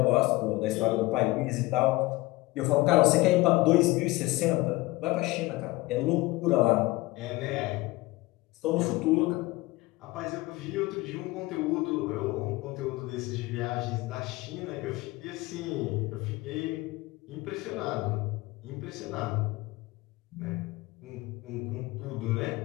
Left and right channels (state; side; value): quieter; right; 20.6 dB